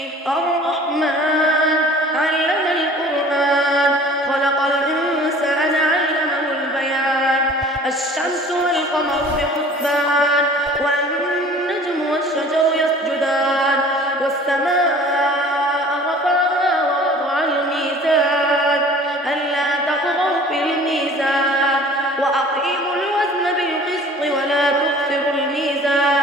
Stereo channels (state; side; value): normal; both; correlation 0.47